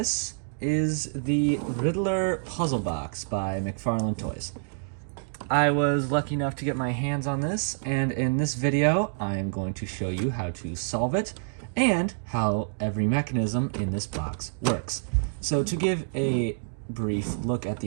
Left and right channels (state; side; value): silent; left; digital silence